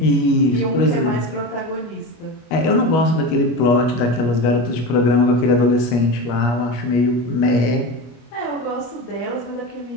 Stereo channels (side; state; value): right; late; 25 ms